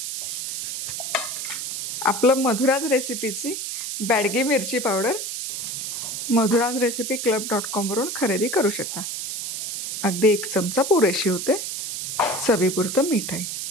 आपलं मधुराज रेसिपीची बॅडगी मिरची पावडर madhurazrecipeclub.com वरून खरेदी करू शकता. अगदी 1 चमचा पुरेशी होते. चवीपुरतं मीठ आहे.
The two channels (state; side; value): noise; right; hiss, 5 dB below the sound